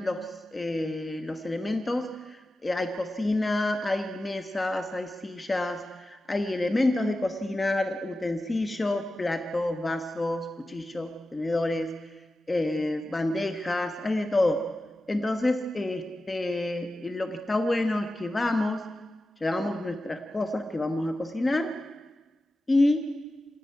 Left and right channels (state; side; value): normal; both; correlation 0.93